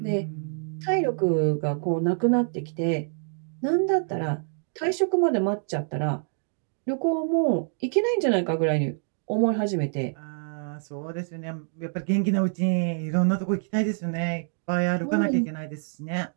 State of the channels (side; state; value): left; silent; 61 dB below the other